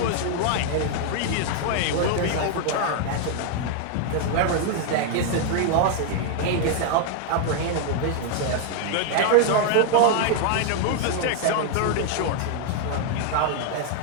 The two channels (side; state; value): both; different; correlation 0.00